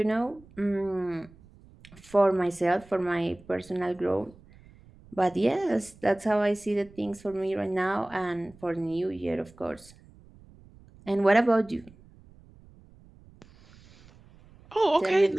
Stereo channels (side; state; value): right; noise; rumble, 25 dB below the sound